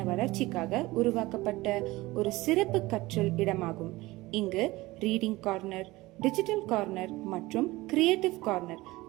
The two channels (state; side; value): quieter; left; 19.9 dB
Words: வளர்ச்சிக்காக உருவாக்கப்பட்ட ஒரு சிறப்பு கற்றல் இடமாகும். இங்கு ரீடிங் கார்னர், டிஜிட்டல் கார்னர் மற்றும் கிரியேட்டிவ் கார்னர்